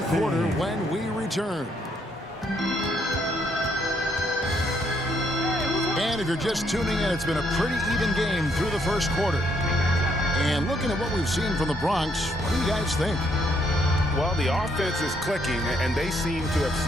quarter when we return. And if you're just tuning in, it's been a pretty even game through the first quarter. And looking at what we've seen from the Bronx, what do you guys think? Well, the offense is clicking, and they seem to have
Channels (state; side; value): normal; both; correlation 0.71